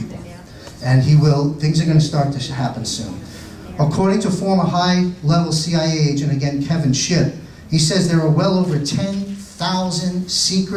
And he will. Things are going to start to happen soon. According to former high-level CIA agent, again, Kevin Shipp, he says there are well over 10,000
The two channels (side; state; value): both; identical; correlation 1.00